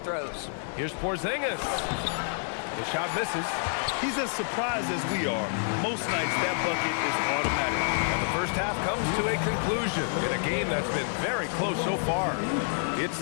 Here's Porzingis. The shot misses. He's as surprised as we are. Most nights, that bucket is automatic. And the first half comes to a conclusion in a game that's been very close so far. It's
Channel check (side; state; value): right; silent; 57 dB below the other